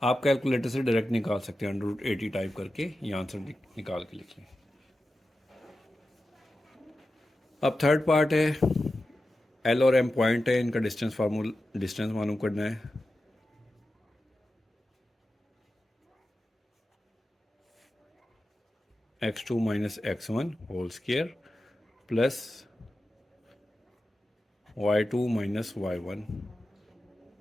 आप कैलकुलेटर से डायरेक्ट निकाल सकते हैं, √80 टाइप करके ये आंसर निकाल के लिख लें। अब थर्ड पार्ट है, एल और एम पॉइंट है, इनका डिस्टेंस मालूम करना है। x2 minus x1 whole square plus y2 minus y1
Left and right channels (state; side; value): normal; both; correlation 0.92